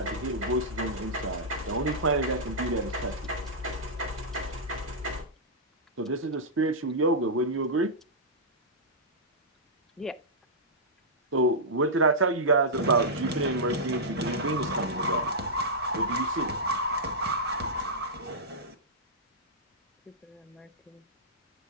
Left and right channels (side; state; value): both; normal; correlation -0.11